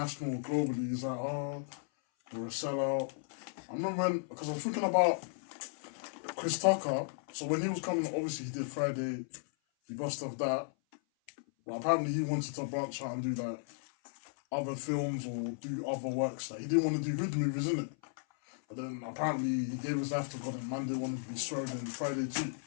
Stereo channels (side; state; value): right; silent; 54 dB below the other